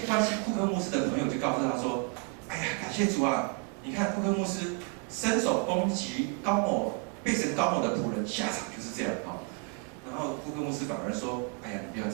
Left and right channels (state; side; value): quieter; left; 34.1 dB